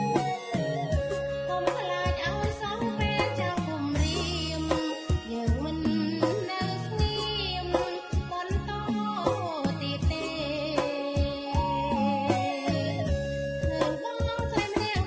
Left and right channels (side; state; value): both; identical; correlation 1.00